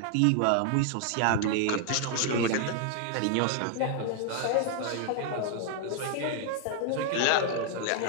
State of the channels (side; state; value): both; different; correlation 0.00